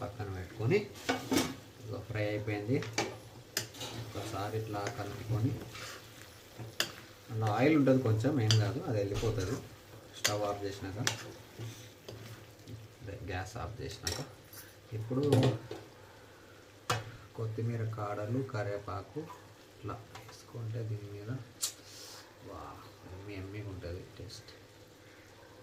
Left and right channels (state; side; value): identical; both; correlation 1.00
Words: పెట్టుకొని, ఫ్రై అయిపోయింది. ఒకసారి ఇట్లా కలుపుకొని, అలా ఆయిల్ ఉంటుంది కొంచెం, ఏం కాదు, అది వెళ్ళిపోతుంది. స్టవ్ ఆఫ్ చేసినాక, గ్యాస్ ఆఫ్ చేసినాక ఇప్పుడు కొత్తిమీర కాడలు, కరివేపాకు ఇట్లా వేసుకుంటే దీని మీద వా ఎమ్మిగా ఉంటుంది టేస్ట్.